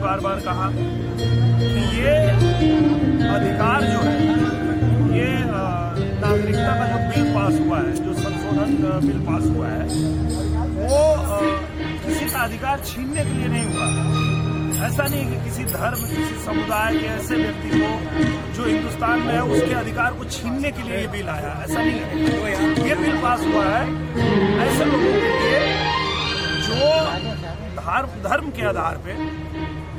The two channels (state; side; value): identical; both; correlation 1.00